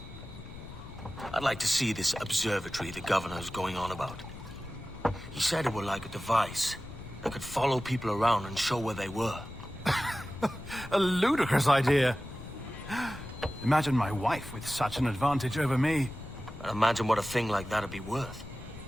I'd like to see this observatory the governor's going on about. He said it were like a device that could follow people around and show where they were. A ludicrous idea. Imagine my wife with such an advantage over me. And imagine what a thing like that'd be worth.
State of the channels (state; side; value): noise; left; rumble, 14 dB below the sound